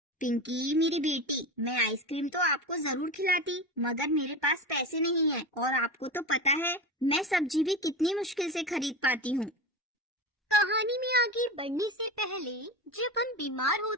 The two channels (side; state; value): both; normal; correlation 0.25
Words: पिंकी मेरी बेटी, मैं आइसक्रीम तो आपको जरूर खिलाती, मगर मेरे पास पैसे नहीं है और आपको तो पता है मैं सब्जी भी कितनी मुश्किल से खरीद पाती हूँ। कहानी में आगे बढ़ने से पहले, जब हम बीमार